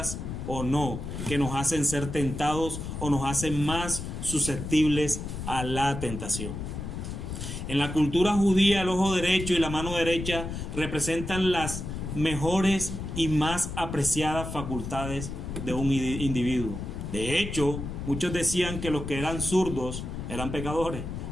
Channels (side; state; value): left; noise; rumble, 6 dB below the sound